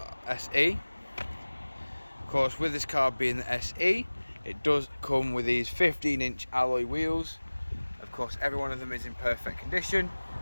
Of course, with this car being the SE, it does come with these 15-inch alloy wheels. Of course, every one of them is in perfect condition.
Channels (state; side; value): inverted; both; correlation -1.00